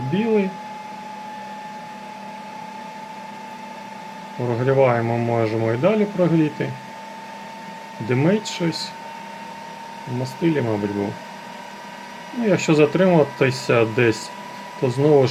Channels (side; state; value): both; identical; correlation 1.00